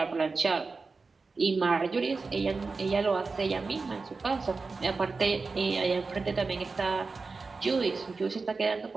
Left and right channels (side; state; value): left; quieter; 4.2 dB